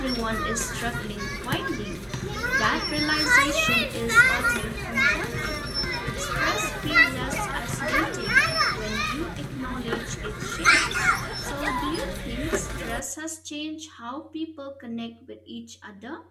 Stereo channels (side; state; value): both; identical; correlation 1.00